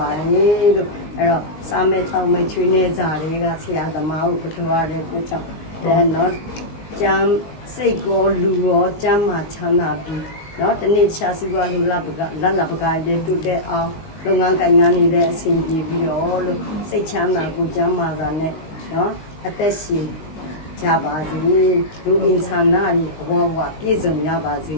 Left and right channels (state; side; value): late; right; 18 ms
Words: ါတယ်လို့အဲ့တော့စာမဲချောင်းမဲချွေးနေကြတွေကဆရာသမားကိုကြောရတဲ့အတွက်ကြောင့်နော်ကျမ်းစိတ်ကောလူရောကျမ်းမှာချမ်းသာပြီးနော်တနေ့ရှားစီပွားလူလက်ပကားလေးတူတဲ့အောင်လုပ်ငန်းကိုင်ငန်းနေတဲ့အဆင်ပြေပြီးတော့လို့စိတ်ချမ်းသာကိုကျမ်းမာတာနဲ့နော်အသက်ရှင်ကြပါစေလူအင်ဆန္ဒတွေအဝဝပြည့်စုံရပါစေ